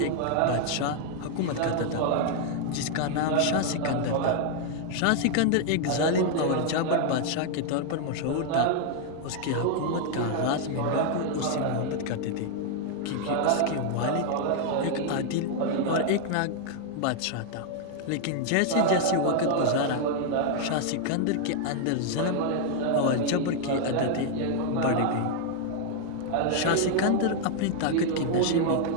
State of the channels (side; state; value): both; different; correlation 0.00